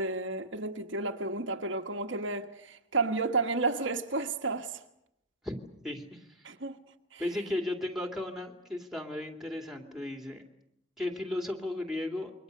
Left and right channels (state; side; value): normal; both; correlation 0.02